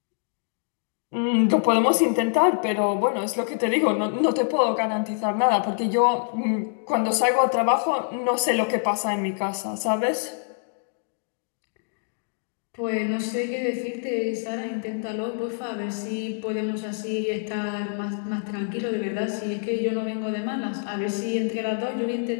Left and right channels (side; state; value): right; silent; digital silence